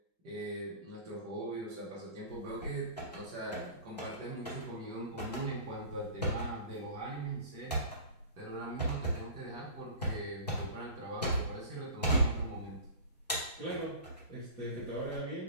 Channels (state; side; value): inverted; both; correlation -0.38